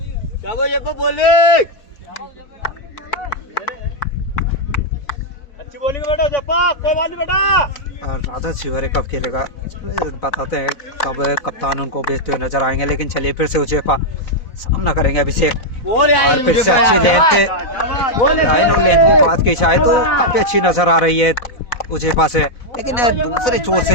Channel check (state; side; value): late; right; 4.0 ms